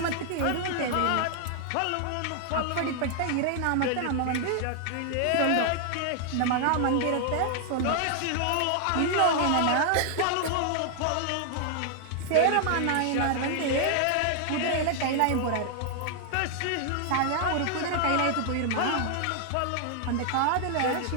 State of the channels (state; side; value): different; both; correlation 0.00